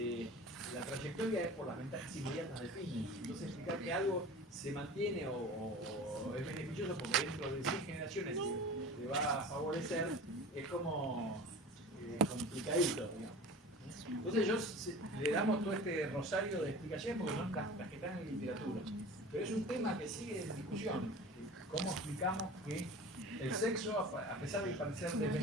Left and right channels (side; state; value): both; normal; correlation 0.37